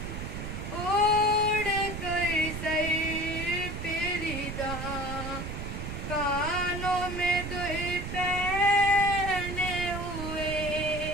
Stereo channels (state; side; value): noise; right; rumble, 6 dB below the sound